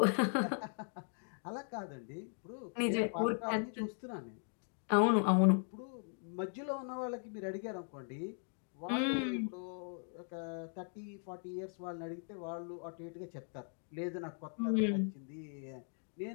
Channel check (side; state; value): right; silent; 52 dB below the other